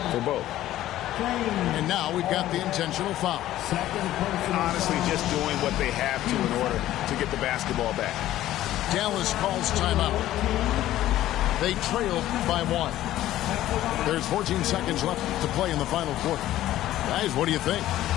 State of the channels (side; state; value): right; quieter; 14.0 dB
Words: for both. And now we've got the intentional foul. Honestly, just doing what they have to in order to get the basketball back. Dallas calls timeout. They trail by 1. There's 14 seconds left to play in the final quarter. Guys, what do you think?